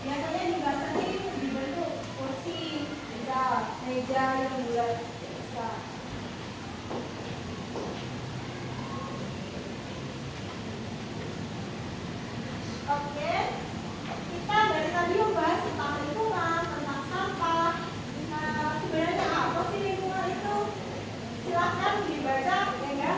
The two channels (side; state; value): both; identical; correlation 1.00